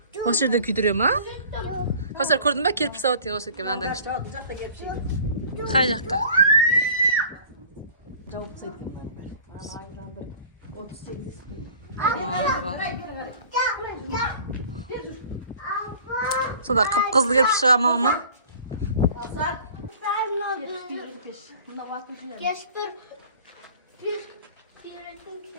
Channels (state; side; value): inverted; both; correlation -0.47